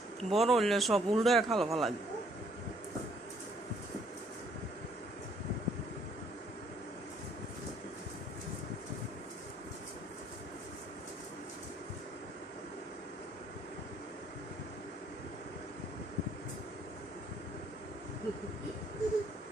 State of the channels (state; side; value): normal; both; correlation 0.65